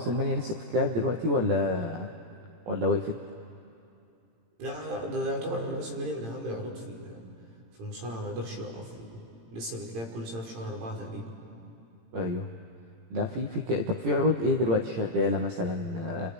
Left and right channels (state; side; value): late; left; 18 ms